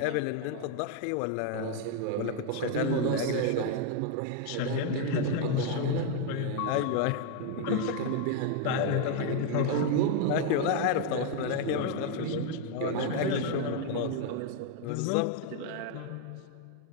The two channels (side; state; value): both; different; correlation 0.01